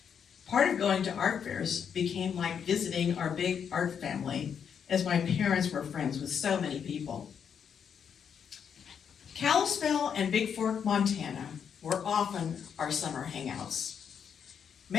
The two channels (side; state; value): right; quieter; 7.5 dB